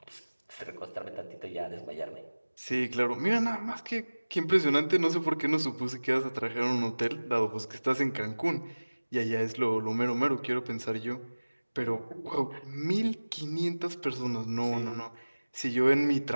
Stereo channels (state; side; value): inverted; both; correlation -1.00